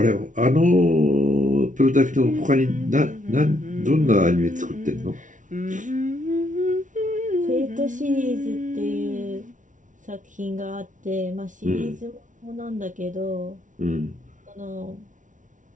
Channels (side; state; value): left; late; 0.37 ms